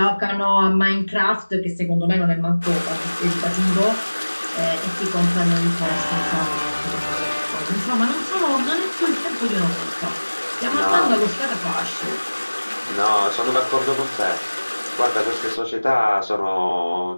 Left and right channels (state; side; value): inverted; both; correlation -1.00